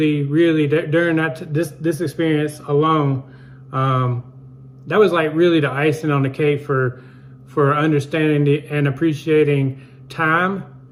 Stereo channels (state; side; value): identical; both; correlation 1.00